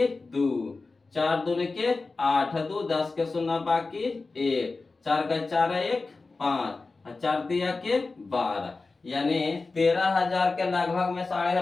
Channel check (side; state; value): right; quieter; 3.8 dB